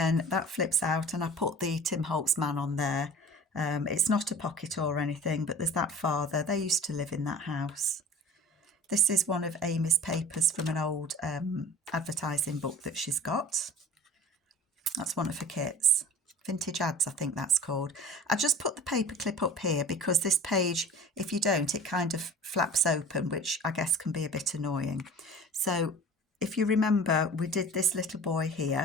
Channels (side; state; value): both; normal; correlation 0.41